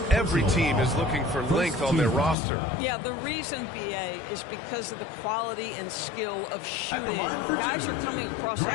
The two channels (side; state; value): right; drops out; at 2.4 s